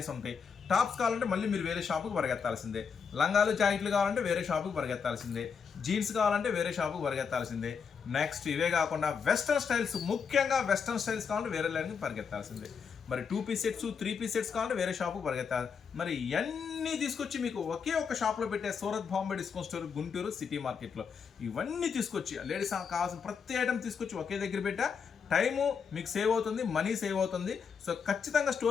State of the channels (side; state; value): right; quieter; 6.3 dB